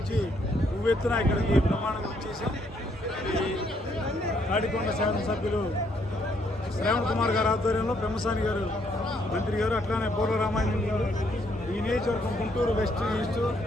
ఉవ్వెత్తున ఇక్కడికి బ్రహ్మాండంగా వచ్చేసాం. ఈ తాడికొండ శాసనసభ్యులు శ్రావణ్ కుమార్ గారి ఆధ్వర్యంలో బ్రహ్మసాని గారు మంత్రి గారు, అట్లానే పూర్వ రామాయణం గారు, ఈ నియోజకవర్గం గుంటూరు వెస్ట్, ఈస్ట్,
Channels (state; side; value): normal; both; correlation 0.71